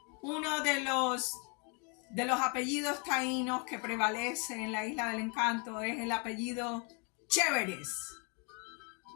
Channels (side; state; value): right; quieter; 34.9 dB